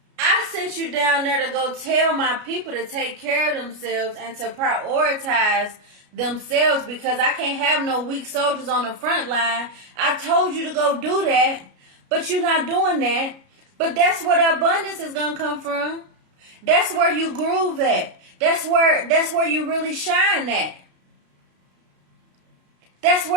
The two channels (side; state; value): left; late; 33 ms